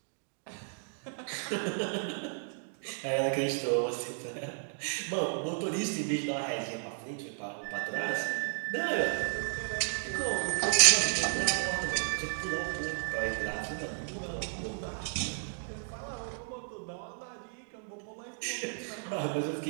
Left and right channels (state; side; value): silent; left; digital silence